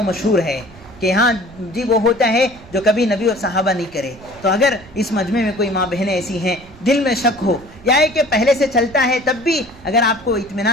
مشہور ہے، کہ ہاں جی وہ ہوتا ہے جو کبھی نبی اور صحابہ نہیں کرے. تو اگر اس مجمع میں کوئی ماں بہنیں ایسی ہیں دل میں شک ہو یا ہے کہ پہلے سے چلتا ہے تب بھی اگر آپ کو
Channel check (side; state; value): right; noise; rumble, 22 dB below the sound